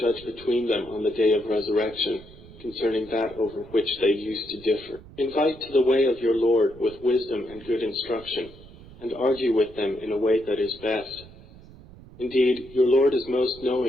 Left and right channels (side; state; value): right; noise; rumble, 20 dB below the sound